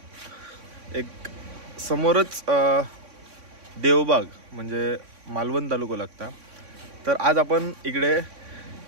एक समोरच देवबाग म्हणजे मालवण तालुका लागता. तर आज आपण इकडे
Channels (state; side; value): late; left; 3.6 ms